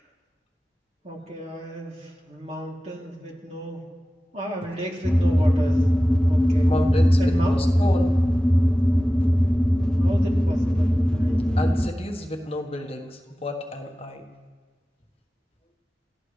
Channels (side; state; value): both; normal; correlation 0.96